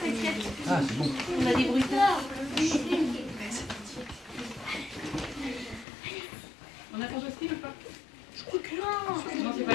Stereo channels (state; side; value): drops out; right; at 5.9 s